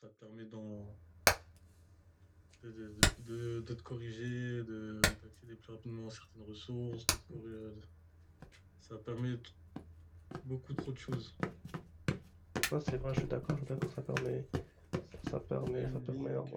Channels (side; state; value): both; identical; correlation 1.00